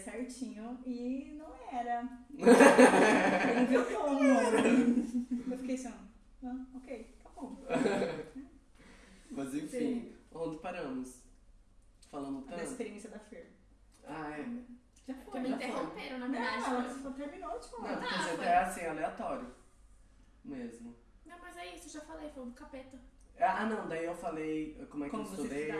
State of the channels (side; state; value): both; identical; correlation 1.00